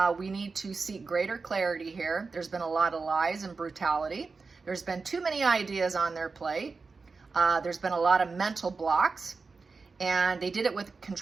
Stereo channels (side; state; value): left; quieter; 4.4 dB